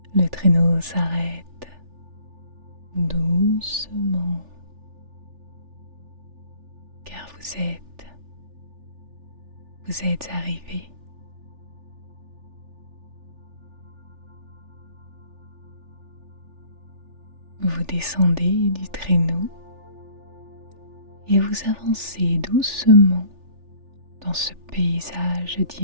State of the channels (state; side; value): late; left; 3.4 ms